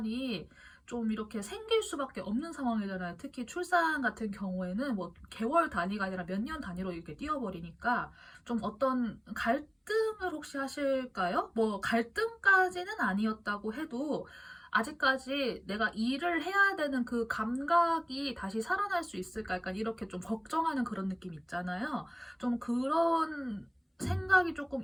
좀 이렇게 생길 수밖에 없는 상황이잖아요. 특히 출산 같은 경우에는 뭐 개월 단위가 아니라 몇 년 단위로 이렇게 뛰어버리니까 좀 어떤 갈등을 혹시 하실까요? 뭐 갈등까지는 아니었다고 해도 아직까지 내가 일을 해야 되는 그 감각이 다시 살아날 수 있을까? 약간 이렇게 좀 걱정하는 그런 느낌 있잖아요. 좀 그런 생각이 조금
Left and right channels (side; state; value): both; identical; correlation 1.00